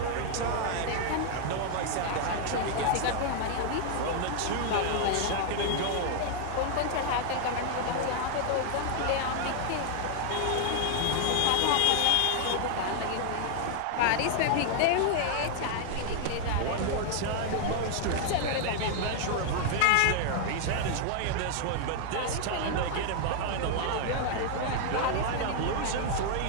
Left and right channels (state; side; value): different; both; correlation 0.00